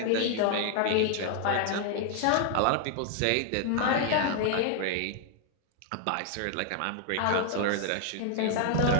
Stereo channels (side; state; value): both; different; correlation 0.00